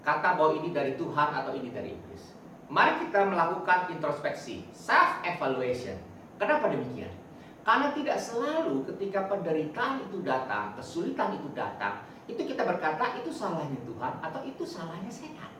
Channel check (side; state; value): both; identical; correlation 1.00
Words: bahwa ini dari Tuhan atau ini dari iblis. Mari kita melakukan introspeksi, self-evaluation. Kenapa demikian? Karena tidak selalu ketika penderitaan itu datang, kesulitan itu datang, itu kita berkata itu salahnya Tuhan atau itu salahnya setan.